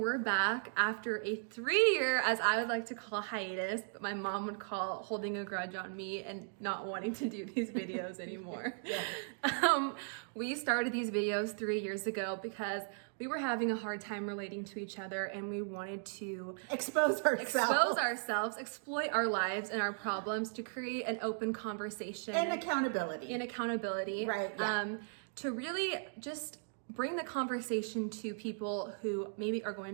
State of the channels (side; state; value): left; silent; digital silence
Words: back after a 3-year, as I would like to call, hiatus, but my mom would call holding a grudge on me and not wanting to do these videos anymore. We started these videos 3 years ago because we were having a hard time relating to each other and we wanted to expose ourselves, exploit our lives and our problems to create an open conversation. And accountability. Right. Yeah. To really just bring the conversation to people who maybe are